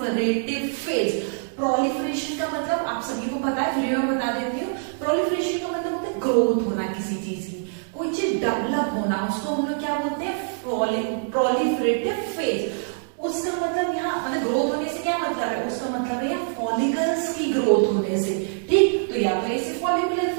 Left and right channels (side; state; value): left; silent; digital silence